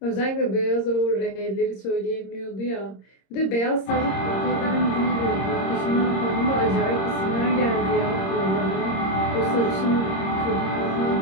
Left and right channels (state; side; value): late; right; 26 ms